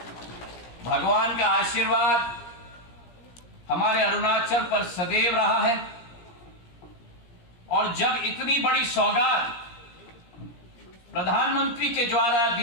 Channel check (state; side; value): late; right; 17 ms